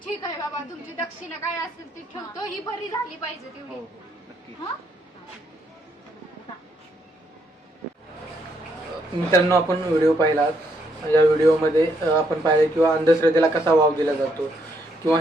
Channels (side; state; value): both; normal; correlation 0.74